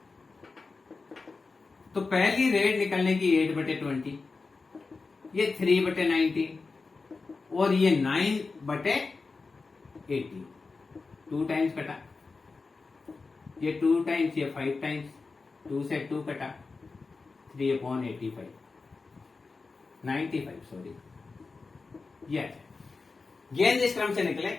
तो पहली रेड निकलने की 8/20, ये 3/19 और ये 9/18, 2 टाइम्स कटा, ये 2 टाइम्स, ये 5 टाइम्स, 2 से 2 कटा, 3/85, 95 सॉरी। यह गेंद इस क्रम से निकले,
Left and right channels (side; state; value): right; quieter; 4.2 dB